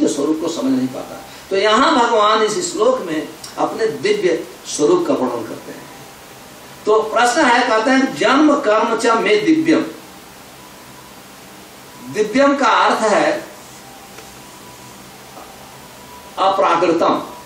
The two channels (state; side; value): identical; both; correlation 1.00